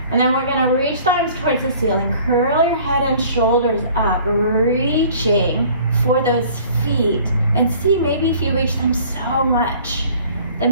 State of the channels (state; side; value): inverted; both; correlation -0.51